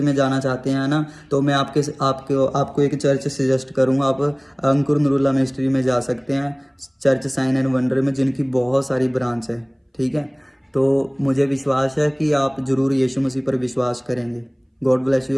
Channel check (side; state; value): both; identical; correlation 1.00